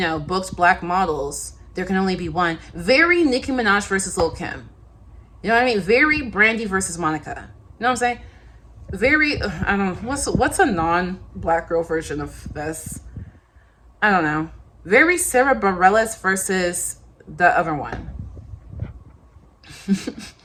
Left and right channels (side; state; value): both; identical; correlation 1.00